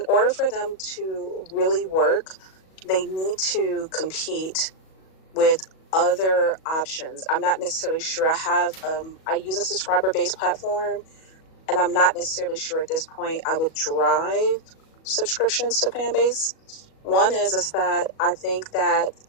order for them to really work, they need to compete with other options. I'm not necessarily sure. I use a subscriber-based platform, and I'm not necessarily sure at this point I would drive subscriptions to Fanbase. One is that I think that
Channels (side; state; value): right; late; 37 ms